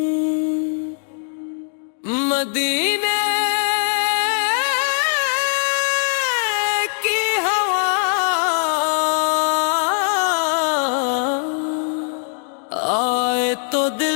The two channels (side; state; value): right; silent; 58 dB below the other